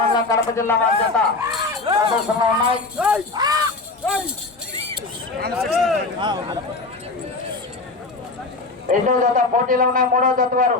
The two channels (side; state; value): right; quieter; 3.6 dB